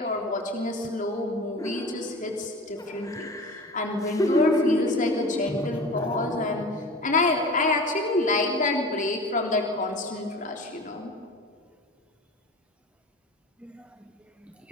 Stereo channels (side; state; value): both; normal; correlation 0.37